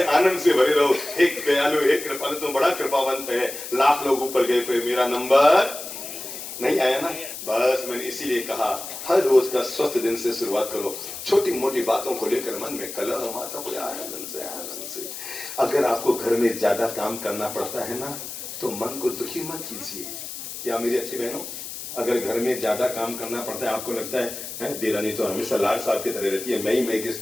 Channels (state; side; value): noise; left; hiss, 9 dB below the sound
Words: आनंद से भरे रहो। एक दयालु, एक कृपालु, तुम बड़ा कृपावंत है। लाख लोग ऊपर गए पे मेरा नंबर नहीं आया ना। बस मैंने इसीलिए कहा हर रोज का स्वस्थ दिन से शुरुआत करो। छोटी मोटी बातों को लेकर मन में कलह माता को आनंद से। अगर आपको घर में ज्यादा काम करना पड़ता है ना तो मन को दुखी मत कीजिए। क्या मेरी अच्छी बहनों, अगर घर में ज्यादा काम करना पड़ता है, आपको लगता है देरानी तो हमेशा लाल साहब की तरह रहती है, मैं